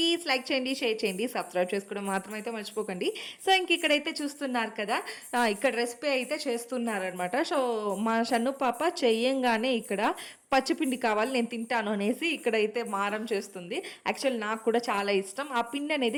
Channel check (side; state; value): both; identical; correlation 1.00